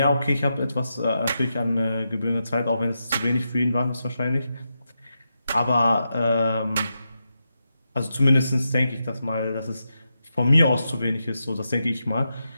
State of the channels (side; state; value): both; inverted; correlation -0.87